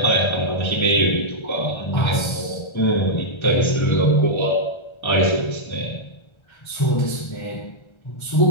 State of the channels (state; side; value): late; right; 1.3 ms